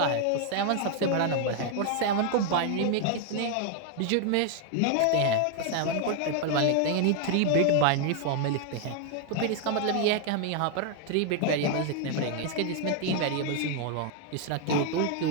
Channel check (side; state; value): both; different; correlation 0.00